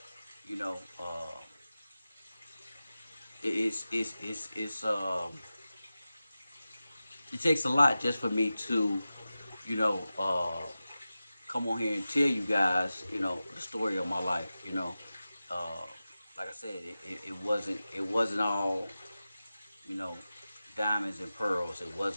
You know, uh, it's it takes a lot just for me to, you know, uh, come on here and tell you guys, the story of my life. Uh, like I said, it wasn't all, you know, diamonds and pearls. It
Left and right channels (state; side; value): inverted; both; correlation -0.95